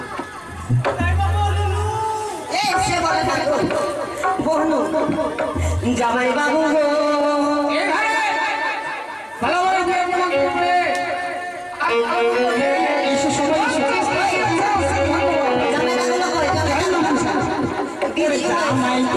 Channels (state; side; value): identical; both; correlation 1.00